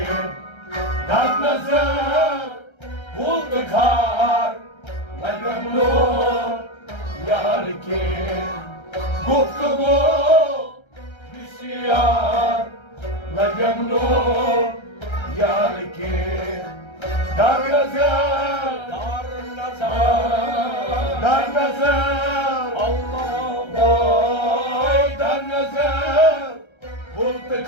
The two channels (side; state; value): right; late; 1.3 ms